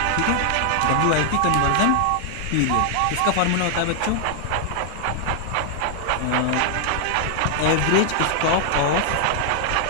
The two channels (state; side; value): different; both; correlation 0.00